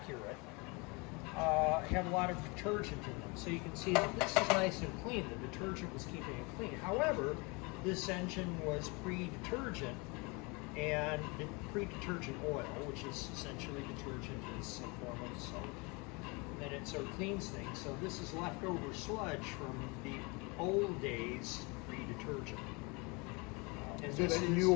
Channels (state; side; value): quieter; right; 28.5 dB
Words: have a lot of detergent in them. So you can see that this is nice and clean. The detergent was keeping it clean. However, this engine was pre-detergent, and pre-detergent oil, which is essentially detergent, is a form of soap. And it sort of cleans things. So this is leftover sludge from the old days pre-detergent. And so this that new